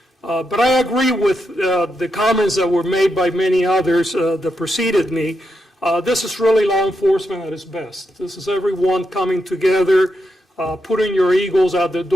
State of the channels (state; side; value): normal; both; correlation 0.83